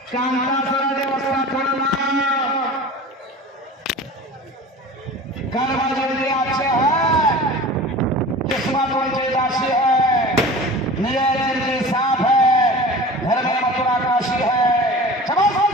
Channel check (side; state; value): both; normal; correlation 0.38